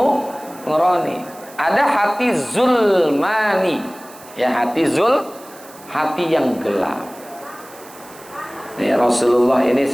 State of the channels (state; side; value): noise; right; hiss, 21 dB below the sound